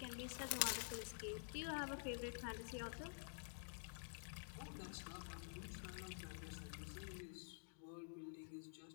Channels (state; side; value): silent; right; digital silence